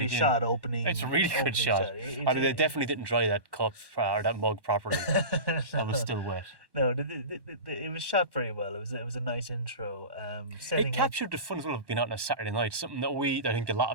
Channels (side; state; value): left; late; 1.1 ms